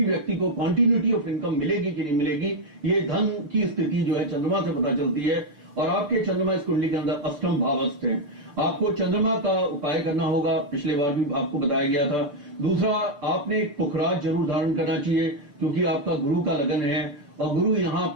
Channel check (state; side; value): late; left; 6.8 ms